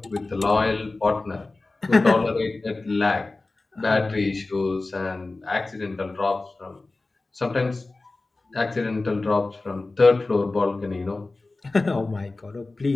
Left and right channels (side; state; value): right; quieter; 3.3 dB